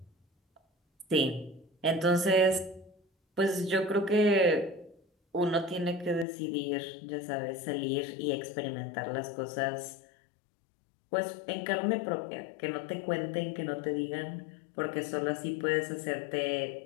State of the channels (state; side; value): drops out; right; at 6.2 s